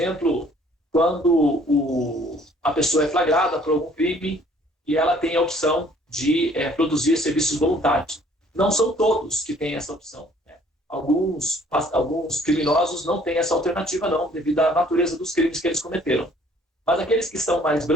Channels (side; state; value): both; normal; correlation 0.58